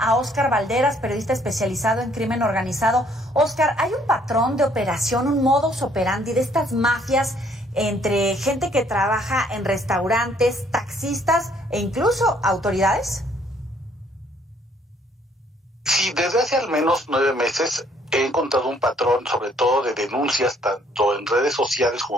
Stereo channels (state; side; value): normal; both; correlation 0.64